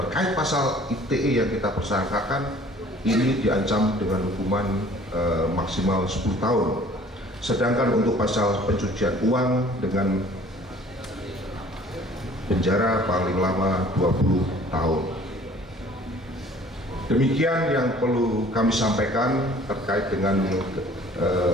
pasal ITE yang kita persangkakan ini diancam dengan hukuman maksimal 10 tahun. Sedangkan untuk pasal pencucian uang dengan penjara paling lama 20 tahun. Demikian yang perlu kami sampaikan terkait dengan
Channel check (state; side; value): normal; both; correlation 0.52